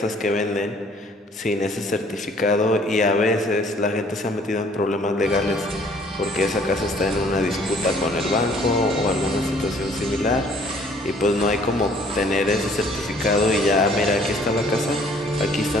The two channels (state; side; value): normal; both; correlation 0.58